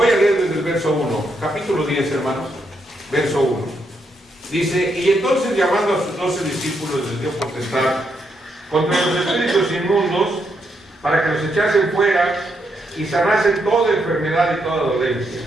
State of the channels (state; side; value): normal; both; correlation 0.79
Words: a leer desde el verso 1, capítulo 10, hermanos, verso 1. Dice, y entonces llamando a sus 12 discípulos les dio potestad contra los espíritus inmundos para que los echasen fuera y sanasen toda enfermedad y toda dolencia.